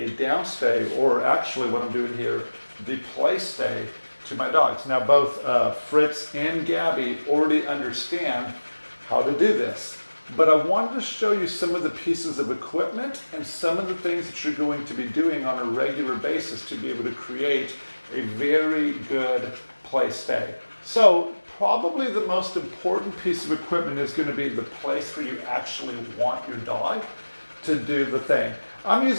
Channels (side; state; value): both; inverted; correlation -1.00